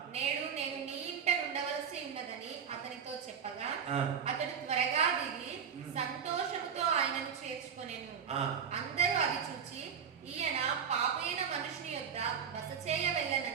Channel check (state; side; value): quieter; left; 7.3 dB